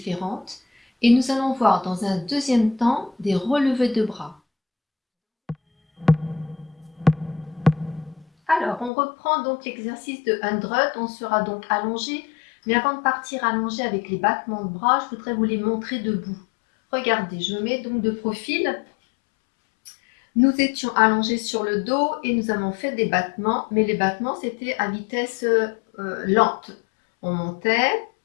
Et nous allons voir dans un deuxième temps des relevés de bras. Alors, on reprend donc l'exercice de 100. On sera donc allongé. Mais avant de partir allongé avec les battements de bras, je voudrais vous les montrer debout. Regardez, je me mets donc de profil. Nous étions allongés sur le dos et nous avons fait des battements, mais les battements c'était à vitesse lente. On montait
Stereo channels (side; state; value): right; drops out; at 8.9 s